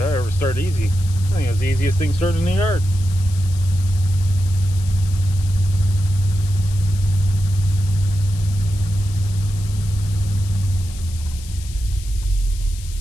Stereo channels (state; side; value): noise; left; hiss, 17 dB below the sound